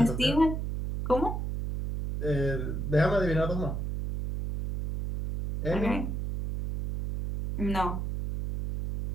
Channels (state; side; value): noise; right; hum, 3 dB below the sound